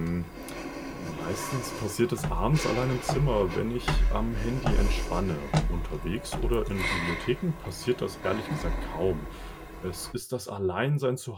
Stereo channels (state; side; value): identical; both; correlation 1.00